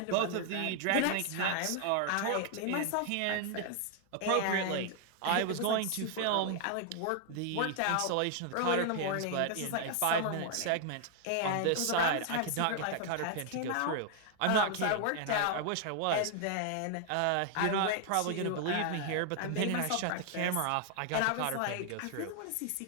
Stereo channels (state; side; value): different; both; correlation 0.00